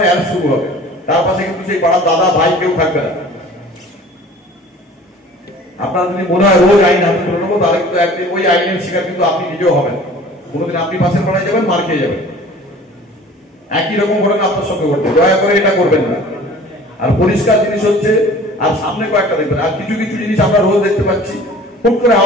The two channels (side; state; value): both; normal; correlation 0.46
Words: অ্যারেস্ট শুরু হবে। তার পাশে কিন্তু সেই পাড়ার দাদা ভাই কেউ থাকবে না। আপনার যদি মনে হয় রোজ আইন হাতে তুলে নেবো, তাহলে কিন্তু একদিন ওই আইনের শিকার কিন্তু আপনি নিজেও হবেন। কোনোদিন আপনি পাশের পাড়ায় যাবেন, মার খেয়ে যাবেন। একই রকম ঘটনা আপনার সঙ্গে ঘটবে। দয়া করে এটা করবেন না। আর পরিষ্কার জিনিস হচ্ছে, আর সামনে কয়েকটা দেখবেন, আর কিছু কিছু জিনিস আমরা রোজ দেখতে পাচ্ছি, হুট করে